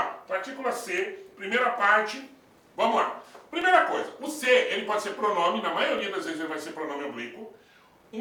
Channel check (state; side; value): identical; both; correlation 1.00